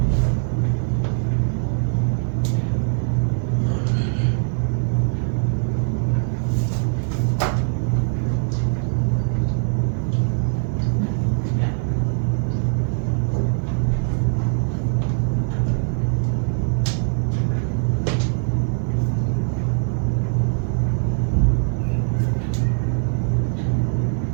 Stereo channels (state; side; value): silent; left; digital silence